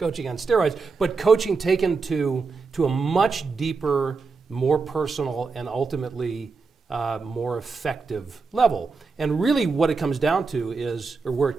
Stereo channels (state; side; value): quieter; left; 4.5 dB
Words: on steroids, but coaching taken to a much deeper, more personal, and ultimately more effective level. And really what it comes down to is, or where it